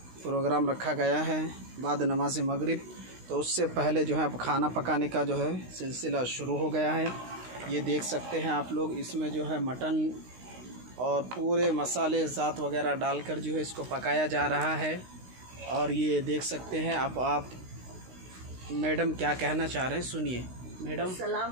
प्रोग्राम रखा गया है बाद नमाज मगरिब। तो उससे पहले जो है अब खाना पकाने का जो है सिलसिला शुरू हो गया है। ये देख सकते हैं आप लोग, इसमें जो है मटन और पूरे मसाले ज़ात वगैरह डालकर जो है इसको पकाया जा रहा है। और ये देख सकते हैं आप मैडम क्या कहना चाह रहे हैं, सुनिए मैडम।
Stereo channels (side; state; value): left; late; 16 ms